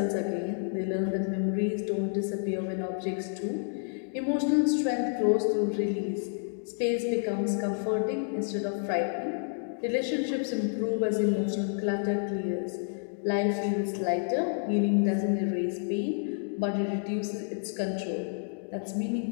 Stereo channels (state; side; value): silent; right; digital silence